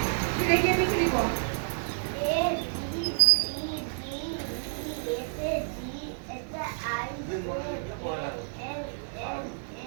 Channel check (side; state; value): left; silent; 58 dB below the other